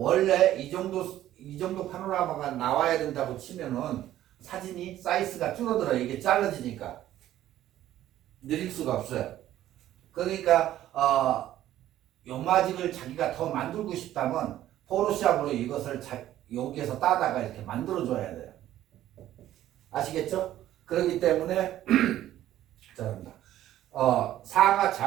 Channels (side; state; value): left; quieter; 13.0 dB